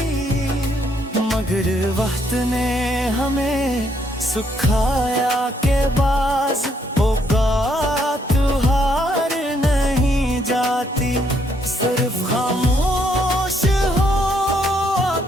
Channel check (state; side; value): normal; both; correlation 0.72